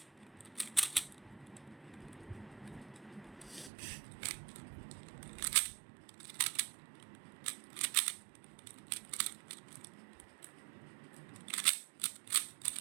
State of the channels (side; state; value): left; drops out; at 3.7 s